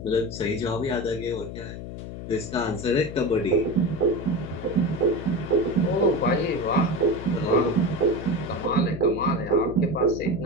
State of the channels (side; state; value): left; noise; hum, 9 dB below the sound